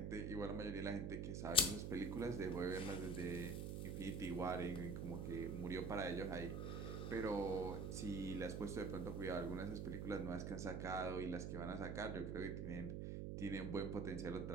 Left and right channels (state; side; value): noise; right; hum, 2 dB below the sound